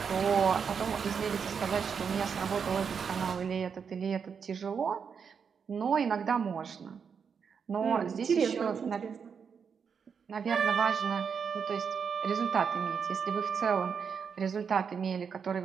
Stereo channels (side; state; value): left; quieter; 6.5 dB